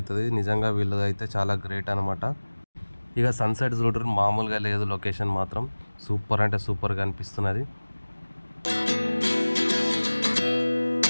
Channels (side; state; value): both; inverted; correlation -1.00